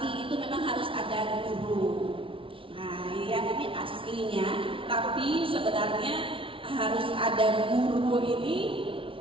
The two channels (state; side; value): late; left; 0.25 ms